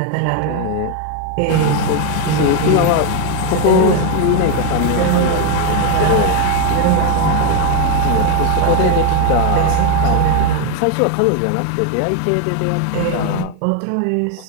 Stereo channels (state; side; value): different; both; correlation 0.01